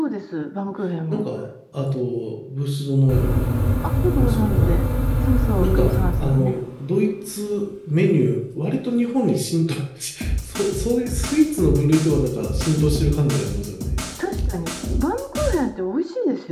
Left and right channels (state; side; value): identical; both; correlation 1.00